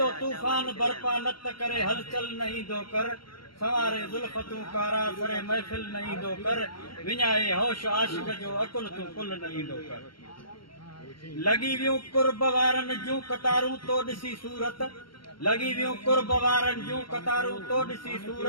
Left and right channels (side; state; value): right; late; 0.73 ms